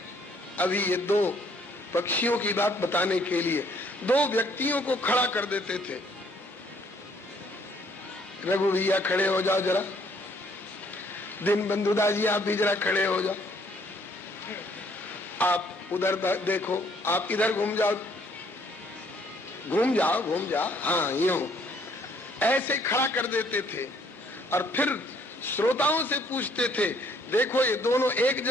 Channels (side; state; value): both; normal; correlation 0.64